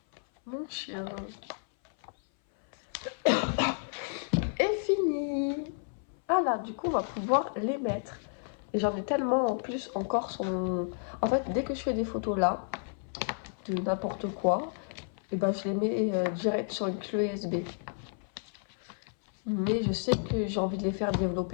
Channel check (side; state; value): right; silent; 57 dB below the other